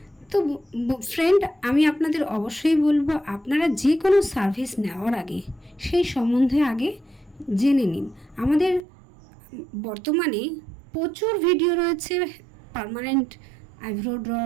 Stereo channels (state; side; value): drops out; left; at 8.8 s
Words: তো ফ্রেন্ড, আমি আপনাদের অবশ্যই বলবো, আপনারা যে কোনো সার্ভিস নেওয়ার আগে সেই সম্বন্ধে আগে জেনে নিন। আমাদের বর্তমানে প্রচুর ভিডিও রয়েছে permanent eyebrow draw,